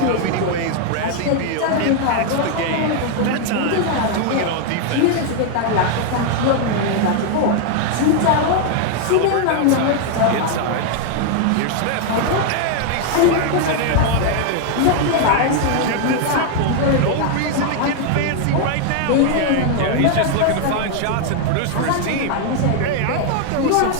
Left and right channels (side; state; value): both; different; correlation 0.00